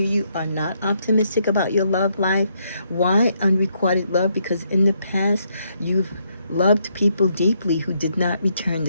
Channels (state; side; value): inverted; both; correlation -0.75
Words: are not optimistic about your love life. Why unrequited love? Because in the past, you've loved people deeply who did not return